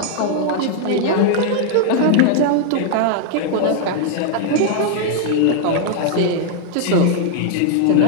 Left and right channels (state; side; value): different; both; correlation 0.00